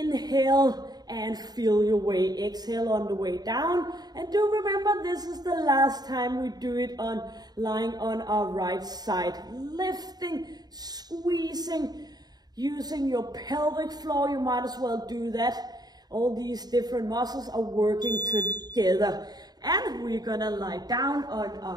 and feel your way. Exhale on the way down. And do remember, this is the last time we do it on lying on our right side. Lifting, squeezing, using your pelvic floor. You might as well do that. All these different muscles are working together. And we're gonna lie down on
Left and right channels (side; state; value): left; late; 0.19 ms